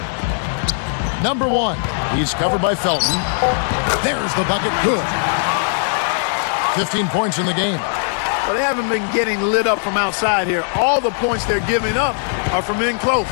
Number 1. He's covered by Felton. There's the bucket. Good. 15 points in the game. Well, they haven't been getting lit up from outside here. All the points they're giving up are from in close.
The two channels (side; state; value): right; silent; digital silence